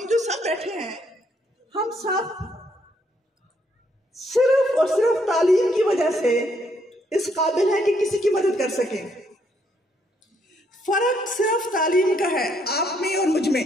जो सब बैठे हैं, हम सब सिर्फ और सिर्फ तालीम की वजह से इस काबिल है कि किसी की मदद कर सकें। फर्क सिर्फ तालीम का है, आप में और मुझ में।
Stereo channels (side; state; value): both; normal; correlation 0.71